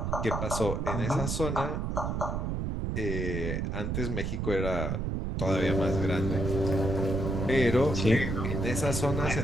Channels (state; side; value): noise; right; rumble, 1 dB below the sound